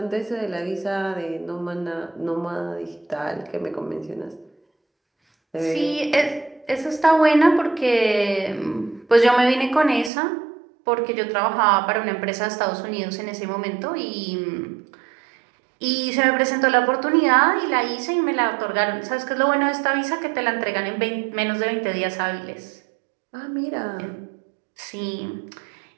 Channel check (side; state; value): left; drops out; at 10.1 s